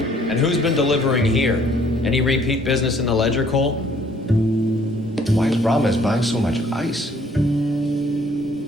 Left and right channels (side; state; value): both; normal; correlation 0.61